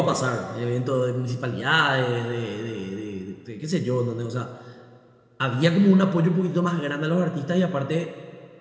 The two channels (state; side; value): identical; both; correlation 1.00